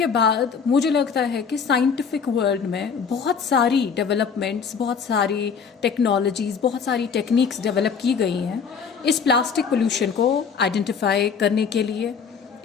बाद मुझे लगता है कि scientific world में बहुत सारी डेवलपमेंट्स, बहुत सारी टेक्नोलॉजीज़, बहुत सारी टेक्निक्स डेवलप की गई हैं इस प्लास्टिक पोल्यूशन को आइडेंटिफाई करने के लिए,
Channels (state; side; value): quieter; right; 6.2 dB